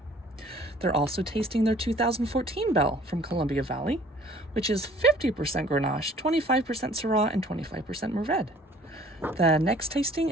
They're also tasting their 2014 Belle from Columbia Valley, which is 50% Grenache, 25% Syrah, and 25% Mourvèdre. The next tasting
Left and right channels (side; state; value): both; normal; correlation 0.54